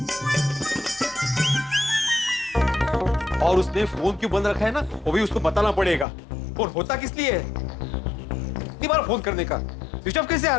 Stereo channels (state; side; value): drops out; right; at 6.1 s